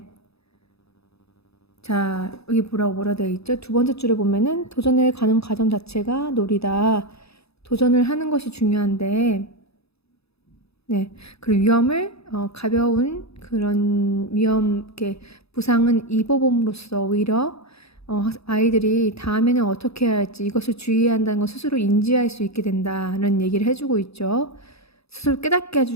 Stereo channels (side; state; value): right; late; 0.78 ms